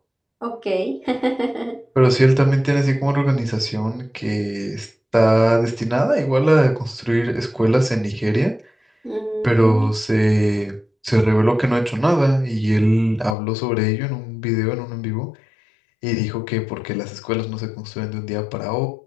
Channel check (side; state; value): right; drops out; at 13.4 s